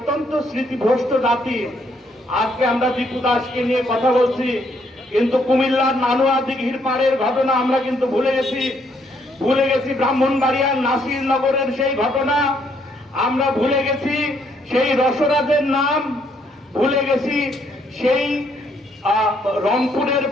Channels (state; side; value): normal; both; correlation 0.70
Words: স্মৃতিভ্রষ্ট জাতি। আজকে আমরা দীপু দাসকে নিয়ে কথা বলছি, কিন্তু কুমিল্লার নানুয়া দিঘির পাড়ের ঘটনা আমরা কিন্তু ভুলে গেছি ব্রাহ্মণবাড়িয়ার নাসিরনগরের সেই ঘটনা, আমরা ভুলে গেছি সেই রসরাজের নাম, ভুলে গেছি সেই রংপুরের